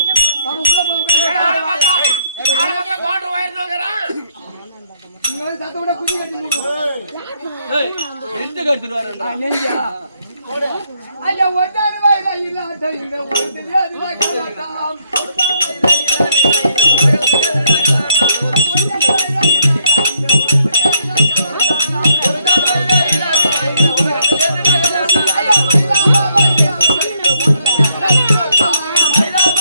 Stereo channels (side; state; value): both; inverted; correlation -0.73